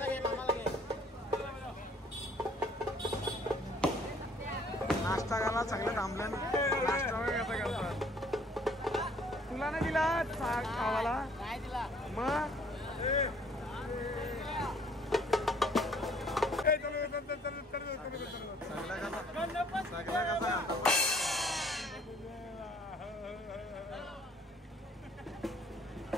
नाश्ता घाला चांगलं थांबलं. नाश्ता वगैरे कसा करतात तुला नाही दिला खावाला मग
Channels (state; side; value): normal; both; correlation 0.59